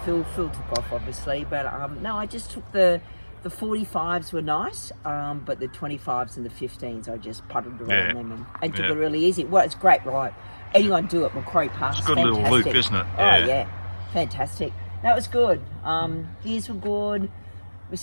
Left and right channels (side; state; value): both; inverted; correlation -1.00